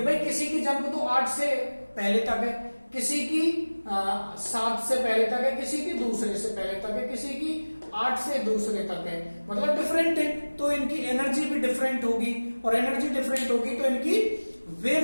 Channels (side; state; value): both; inverted; correlation -1.00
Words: भाई किसी की जंप तो 8 से पहले तक है, किसी की 7 से पहले तक है, किसी की दूसरे से पहले तक है, किसी की 8 से दूसरे तक है, मतलब डिफरेंट है, तो इनकी एनर्जी भी डिफरेंट होगी। और एनर्जी डिफरेंट होगी तो इनकी